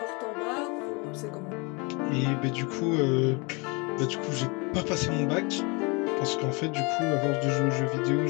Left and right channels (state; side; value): quieter; right; 29.6 dB